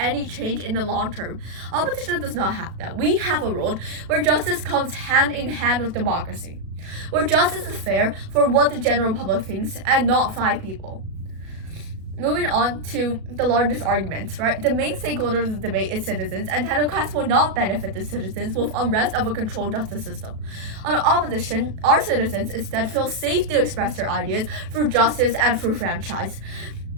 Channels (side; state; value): left; late; 36 ms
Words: change in the long term. Opposition does not have that. We have a world where justice comes hand in hand with democracy, where justice is fair for what the general public thinks and not 5 people. Moving on to the largest arguments, right? The main stakeholder of the debate is citizens, and technocrats will not benefit the citizens with unrest of a controlled justice system. On the opposition, our citizens instead feel safe to express their ideas through justice and through franchise.